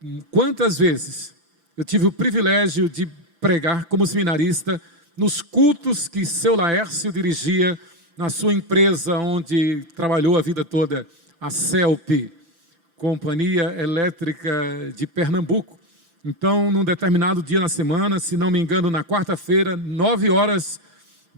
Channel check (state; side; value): late; left; 6.5 ms